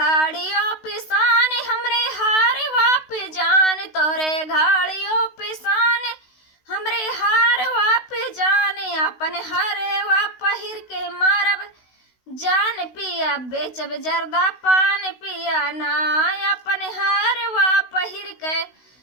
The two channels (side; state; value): right; late; 16 ms